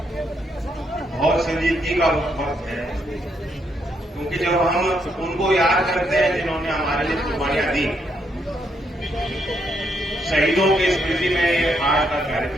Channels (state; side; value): normal; both; correlation 0.76